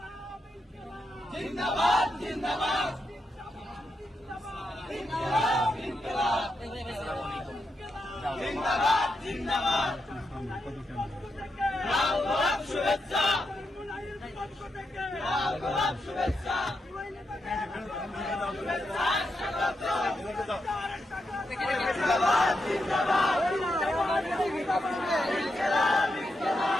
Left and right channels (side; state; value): both; normal; correlation 0.85